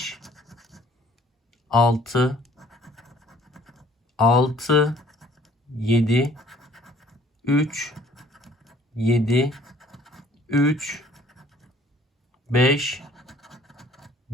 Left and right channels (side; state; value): both; normal; correlation 0.56